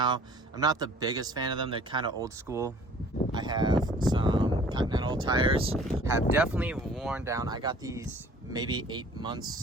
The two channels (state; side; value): normal; both; correlation 0.51